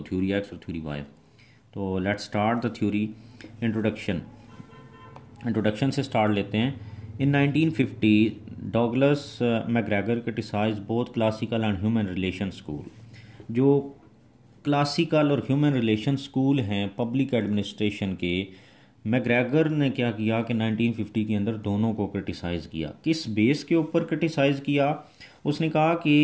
थ्योरी एक्स और थ्योरी वाई। तो let's start the theory. Introduction से स्टार्ट लेते हैं। In 1950 Douglas McGregor criticise both classical and human relation school. जो क्लासिकल और ह्यूमन रिलेशन स्कूल हैं पब्लिक एडमिनिस्ट्रेशन के, मैकग्रेगर ने क्या किया कि 1950 के अंदर दोनों को क्रिटिसाइज़ किया। किस बेस के ऊपर क्रिटिसाइज़ किया? उसने कहा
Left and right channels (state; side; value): identical; both; correlation 1.00